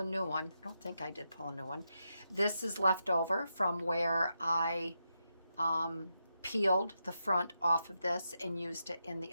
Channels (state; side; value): inverted; both; correlation -0.86